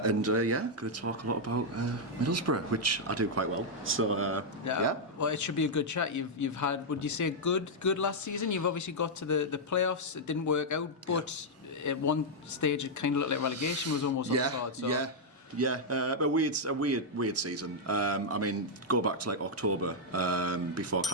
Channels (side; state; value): both; normal; correlation -0.04